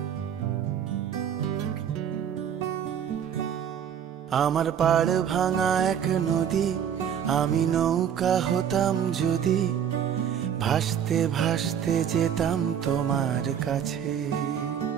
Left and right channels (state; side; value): quieter; left; 8.7 dB